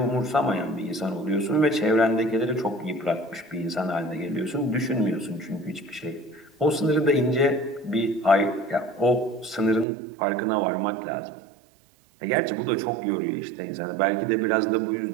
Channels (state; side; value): drops out; left; at 9.9 s